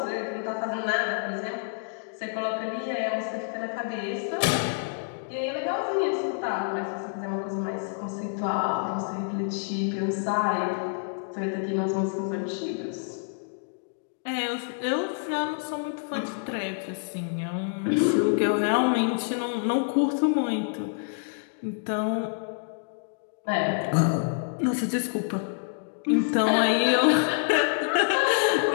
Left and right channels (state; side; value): silent; right; digital silence